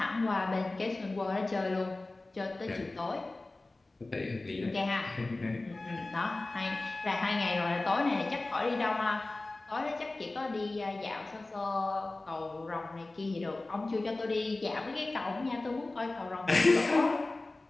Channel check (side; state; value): right; quieter; 3.1 dB